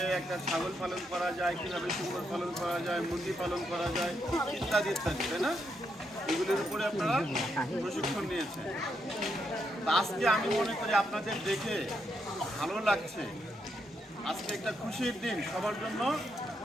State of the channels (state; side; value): normal; both; correlation 0.79